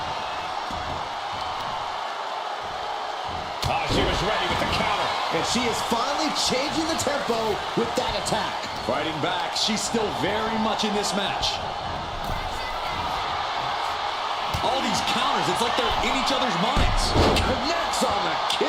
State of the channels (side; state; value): both; identical; correlation 1.00